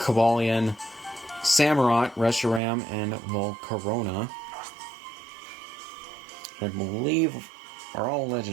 Samurott, Reshiram, and Volcarona. I believe are all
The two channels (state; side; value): drops out; left; at 2.6 s